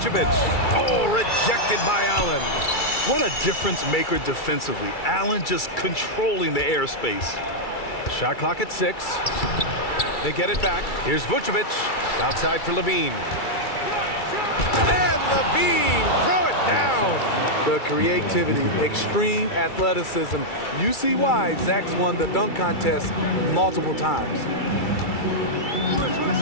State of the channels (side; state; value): right; late; 2.3 ms